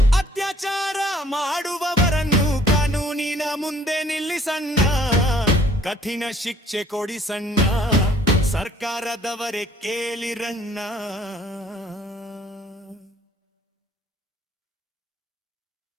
ಅತ್ಯಾಚಾರ ಮಾಡುವವರನ್ನು ಕಾನೂನಿನ ಮುಂದೆ ನಿಲ್ಲಿಸಣ್ಣ, ಕಠಿಣ ಶಿಕ್ಷೆ ಕೊಡಿಸಣ್ಣ, ಸರ್ಕಾರದವರೇ ಕೇಳಿರಣ್ಣ.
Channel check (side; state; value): both; normal; correlation 0.58